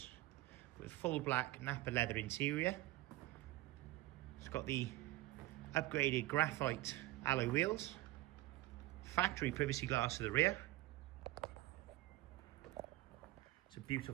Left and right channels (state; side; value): quieter; left; 17.9 dB